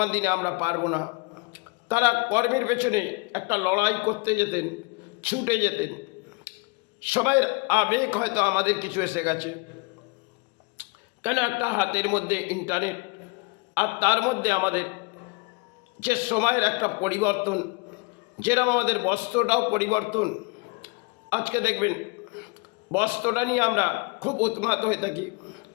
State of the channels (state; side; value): quieter; right; 29.9 dB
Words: দিনে আমরা পারবো না। তারা কর্মের পেছনে একটা লড়াই করতে যেতেন, ছুটে যেতেন। সবাইয়ের আবেগ হয়তো আমাদের কিছু এসে গেছে, কেন একটা হাতের মধ্যে ইন্টারনেট, আর তার মধ্যে আমাদের যে সময়ের একটা পরিবর্তন, যেরকম আমাদের বস্ত্রটাও পরিবর্তন। আজকে দেখবেন বস্ত্রটা নিয়ে আমরা খুব উন্মাদ হয়ে থাকি,